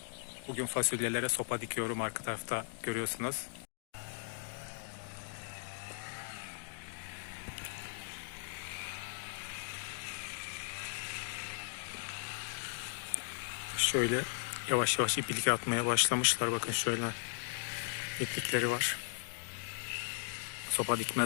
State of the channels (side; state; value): right; silent; digital silence